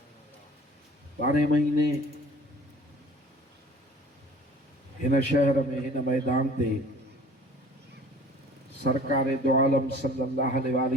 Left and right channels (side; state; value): both; normal; correlation 0.49